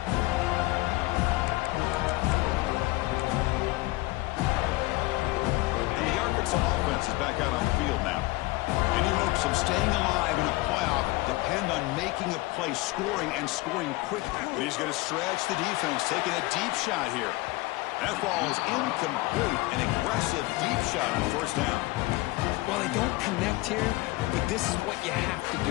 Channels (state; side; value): quieter; right; 20.9 dB